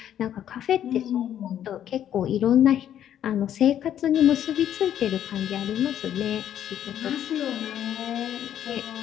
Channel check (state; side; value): quieter; right; 10.4 dB